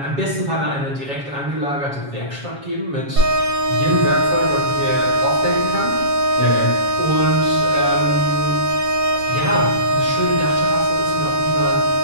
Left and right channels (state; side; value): late; left; 7.3 ms